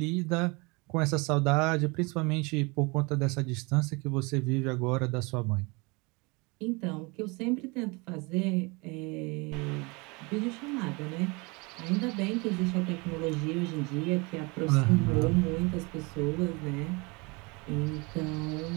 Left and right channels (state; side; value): quieter; left; 27.8 dB